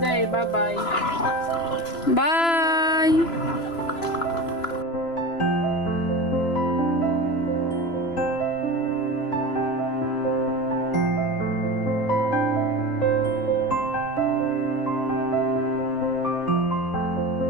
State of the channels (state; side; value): late; right; 3.0 ms